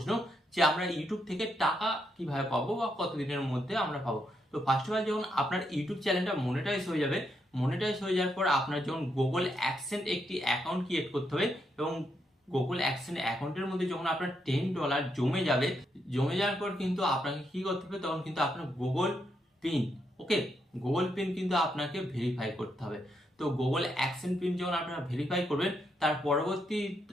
যে আমরা ইউটিউব থেকে টাকা কিভাবে পাবো বা কতদিনের মধ্যে আমরা পাবো? তো ফার্স্ট অফ অল যখন আপনার ইউটিউব চ্যানেলটা মনিটাইজ হয়ে যাবে, মনিটাইজ হয়ে যাওয়ার পর আপনার যখন গুগল অ্যাডসেন্স একটি অ্যাকাউন্ট ক্রিয়েট করতে হবে এবং গুগল অ্যাডসেন্স অ্যাকাউন্টের মধ্যে যখন আপনার $10 জমে যাবে, জমে যাওয়ার পর কিন্তু আপনাকে কি করতে হবে? তখন কিন্তু আপনার গুগল পিন, ওকে, গুগল পিন কিন্তু আপনাকে ভেরিফাই করতে হবে। তো গুগল অ্যাডসেন্স পিন যখন আপনারা ভেরিফাই করবেন, তার পরবর্তী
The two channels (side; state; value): both; normal; correlation 0.80